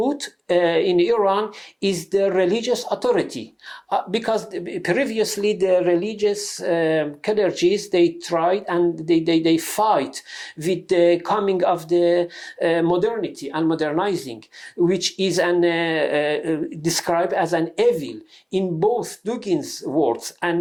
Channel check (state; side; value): identical; both; correlation 1.00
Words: in Iran is the religious authority, because previously the religious clergies, they tried and they fight with the coming of the modernity and modernizing, which is described as an evil in both Dugin's words